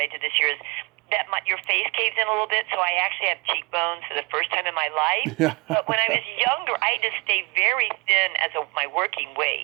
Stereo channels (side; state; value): left; quieter; 28.1 dB